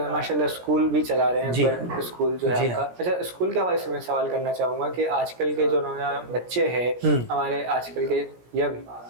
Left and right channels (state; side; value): late; left; 17 ms